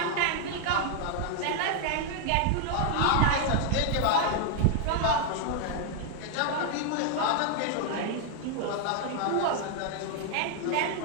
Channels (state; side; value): different; both; correlation 0.00